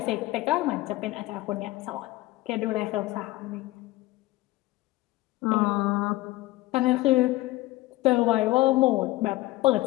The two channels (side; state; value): right; quieter; 18.4 dB